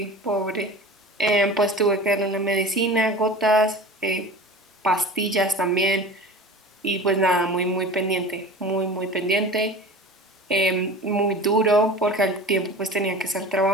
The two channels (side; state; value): both; normal; correlation 0.36